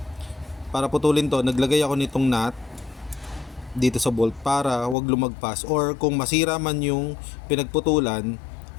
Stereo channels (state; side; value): drops out; right; at 5.0 s